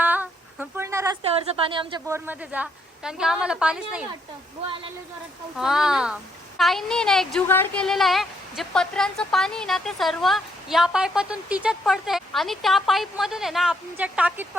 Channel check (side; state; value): both; normal; correlation 0.73